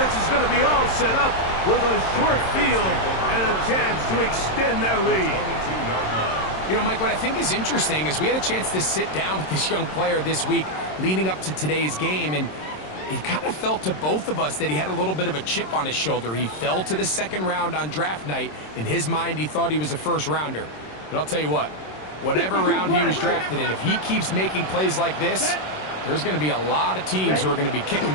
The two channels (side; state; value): right; late; 26 ms